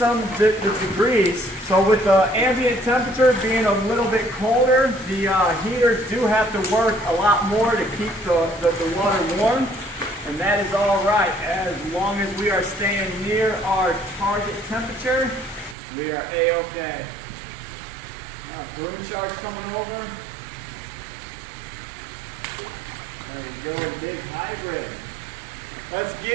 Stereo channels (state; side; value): drops out; left; at 15.8 s